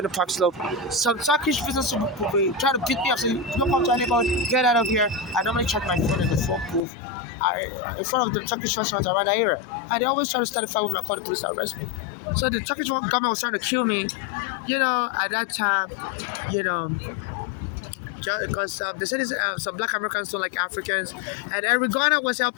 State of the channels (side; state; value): right; drops out; at 6.8 s